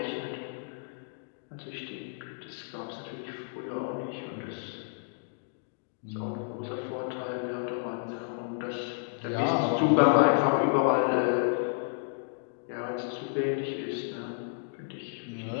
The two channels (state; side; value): silent; right; digital silence